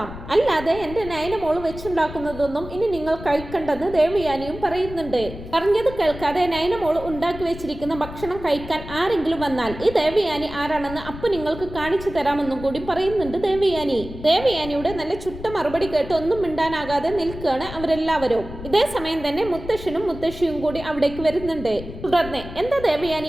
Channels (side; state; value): left; noise; rumble, 12 dB below the sound